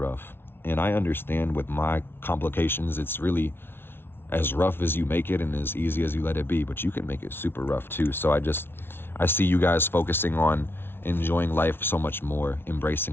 And I understand with my complications, it's really as rough as you make it and as easy as you let it be, but you can make it super rough too. So I see you guys focusing on enjoying life so much more,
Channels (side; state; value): right; late; 0.11 ms